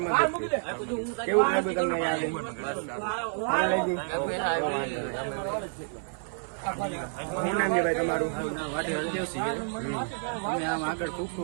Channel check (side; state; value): left; silent; 55 dB below the other